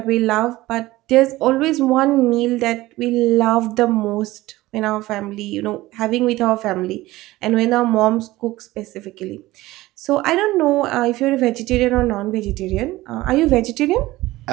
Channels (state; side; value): quieter; left; 17.9 dB